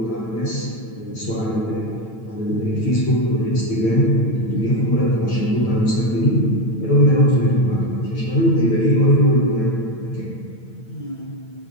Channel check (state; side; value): late; right; 9.0 ms